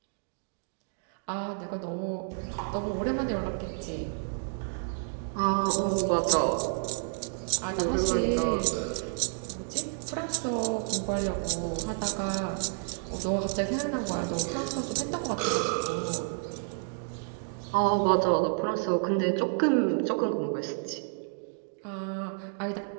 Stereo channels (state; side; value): silent; left; digital silence